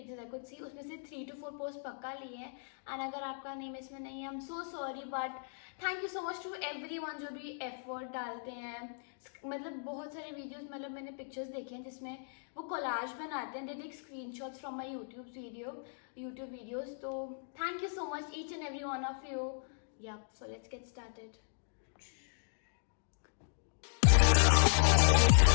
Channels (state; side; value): silent; right; digital silence